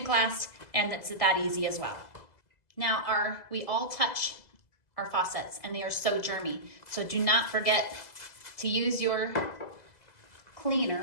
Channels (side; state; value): right; late; 2.0 ms